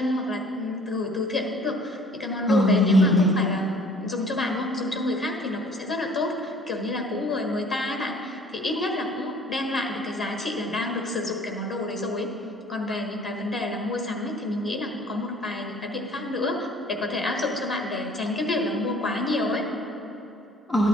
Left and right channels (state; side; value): normal; both; correlation 0.52